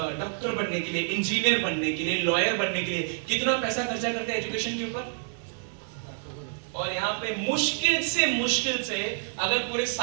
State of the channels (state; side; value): silent; left; digital silence